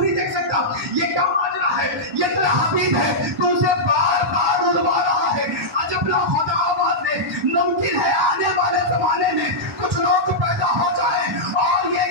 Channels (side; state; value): both; normal; correlation -0.09